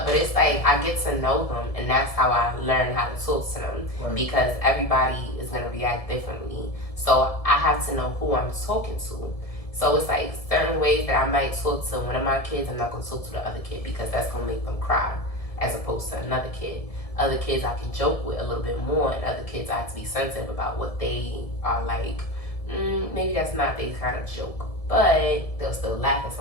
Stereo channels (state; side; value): late; right; 1.7 ms